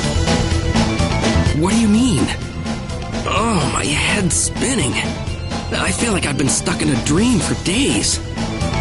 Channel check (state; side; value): identical; both; correlation 1.00